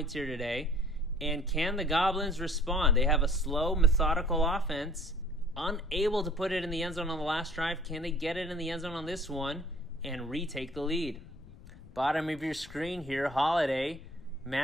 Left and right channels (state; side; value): noise; left; rumble, 19 dB below the sound